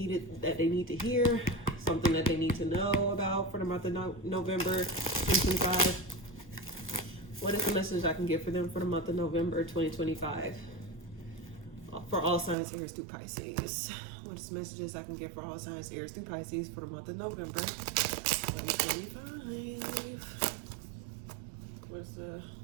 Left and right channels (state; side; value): drops out; left; at 12.6 s